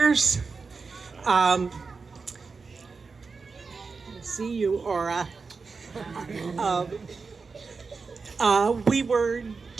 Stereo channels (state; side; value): quieter; left; 4.6 dB